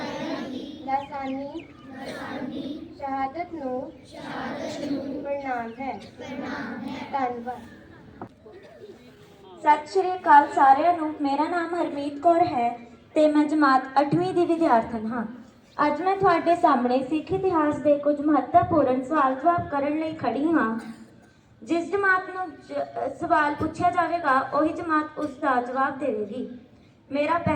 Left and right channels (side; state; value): both; identical; correlation 1.00